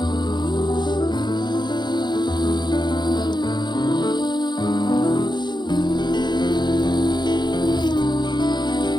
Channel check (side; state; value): right; late; 0.21 ms